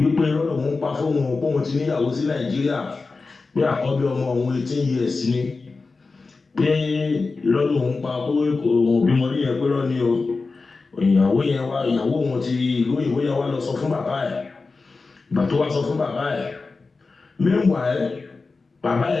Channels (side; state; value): right; quieter; 4.0 dB